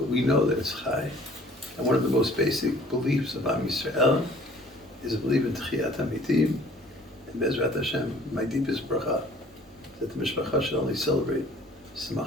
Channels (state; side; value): normal; both; correlation 0.52